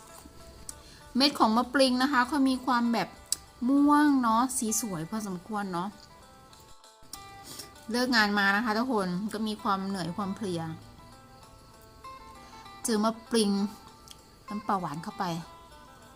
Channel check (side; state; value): both; identical; correlation 1.00